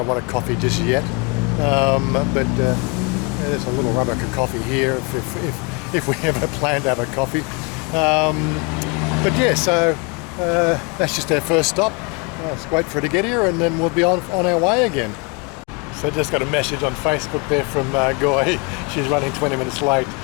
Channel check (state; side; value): quieter; right; 30.1 dB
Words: want a coffee just yet, but there's a little rubber coffee here if we ever plan to have a coffee. But yeah, so that's just our first stop. Let's wait for her to get here, and then we'll be on our way again. So I just got a message on Facebook there from Goy. She's running 20 minutes late.